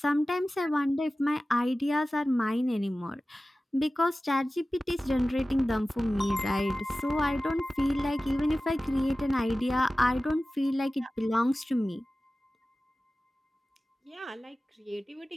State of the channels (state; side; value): normal; both; correlation 0.96